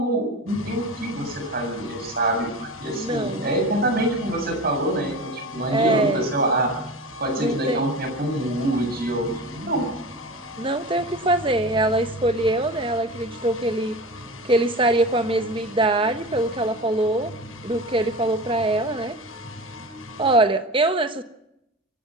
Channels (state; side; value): normal; both; correlation 0.31